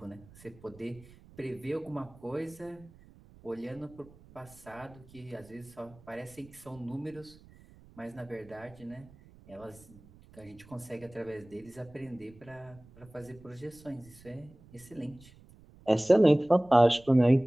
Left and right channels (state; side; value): noise; right; rumble, 23 dB below the sound